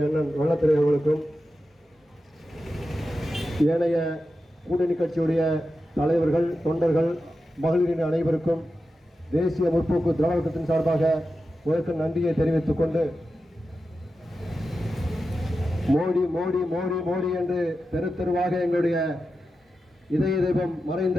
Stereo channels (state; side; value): normal; both; correlation 0.91